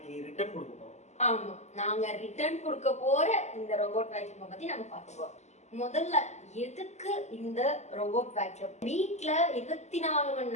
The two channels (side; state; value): right; late; 0.33 ms